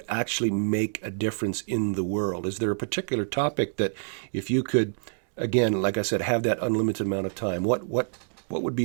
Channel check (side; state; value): left; silent; digital silence